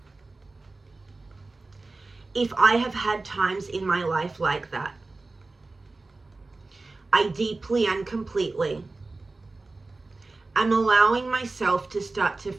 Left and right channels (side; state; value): left; quieter; 3.4 dB